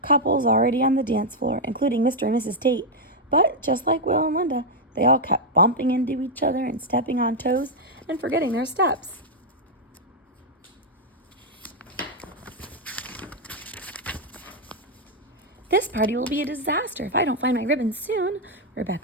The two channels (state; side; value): normal; both; correlation 0.00